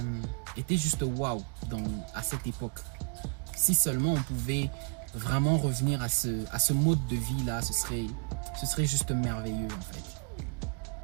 juste waouh à cette époque. Si seulement on pouvait vraiment revenir à ce mode de vie là, ce serait juste merveilleux en fait.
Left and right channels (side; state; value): left; quieter; 34.6 dB